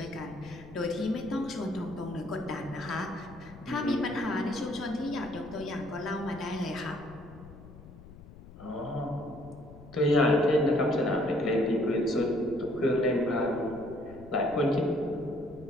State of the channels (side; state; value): left; noise; rumble, 18 dB below the sound